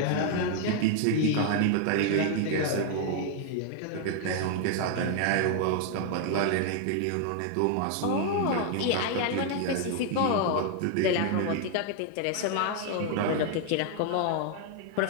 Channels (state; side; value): different; both; correlation 0.00